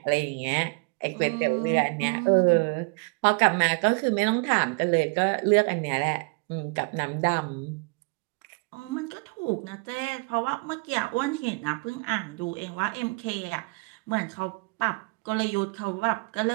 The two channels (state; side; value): quieter; left; 29.8 dB